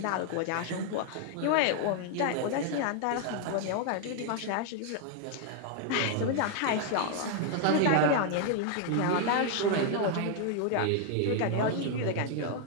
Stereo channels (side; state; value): both; different; correlation 0.00